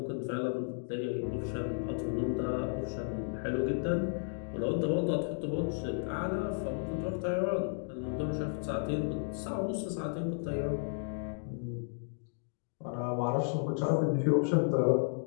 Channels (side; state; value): right; silent; digital silence